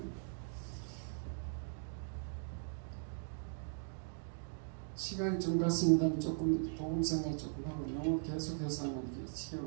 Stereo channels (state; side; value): silent; left; digital silence